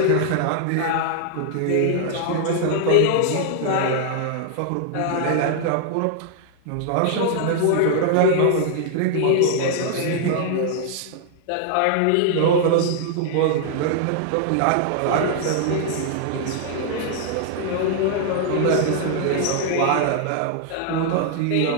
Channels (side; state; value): both; different; correlation -0.01